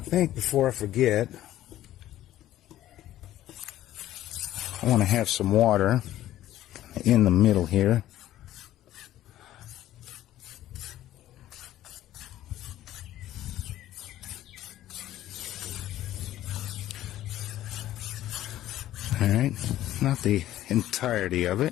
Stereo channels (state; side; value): quieter; right; 13.6 dB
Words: think before I forget, I want to have some water in the middle here. Alright, not the entirety of it,